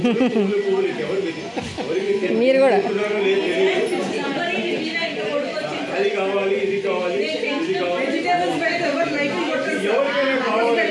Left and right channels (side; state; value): both; identical; correlation 1.00